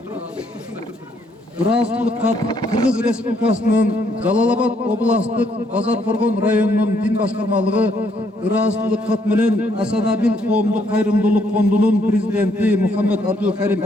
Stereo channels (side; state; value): both; normal; correlation 0.70